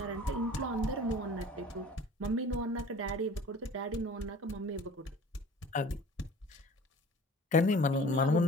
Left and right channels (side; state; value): both; normal; correlation 0.45